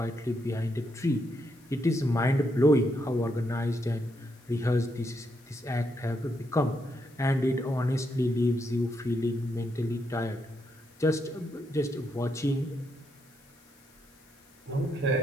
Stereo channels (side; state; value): left; noise; hiss, 29 dB below the sound